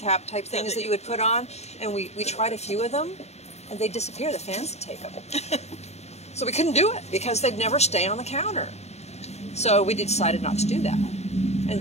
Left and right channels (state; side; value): late; right; 0.32 ms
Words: type things that you would put on. And we tried a few of them, and they'd disappear. The fans would take them. So we couldn't do it because they'd never stay on the counter. So we decided not to do that.